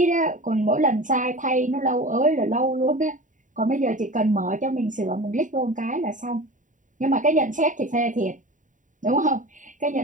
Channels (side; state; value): left; late; 0.37 ms